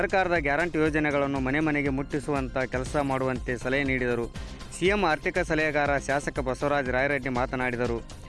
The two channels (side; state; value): both; identical; correlation 1.00